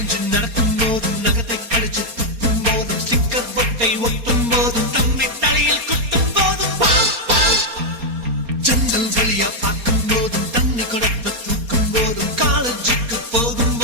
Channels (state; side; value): late; left; 4.3 ms